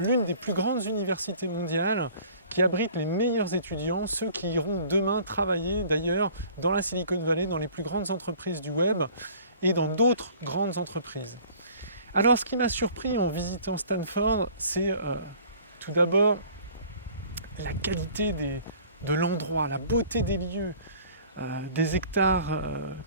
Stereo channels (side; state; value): both; inverted; correlation -0.50